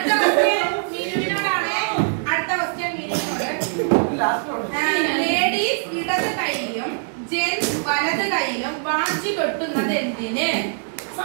ക്വസ്റ്റ്യൻ മിനുവിനോടാണ്. അടുത്ത ക്വസ്റ്റ്യൻ മിനുവിനോട്. ലേഡീസ് ഇടത് കൈയിലും ജെന്റ്സ് വലത് കൈയിലും വാച്ച് കെട്ടുന്നത് എന്തിന്?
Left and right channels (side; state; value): left; silent; 64 dB below the other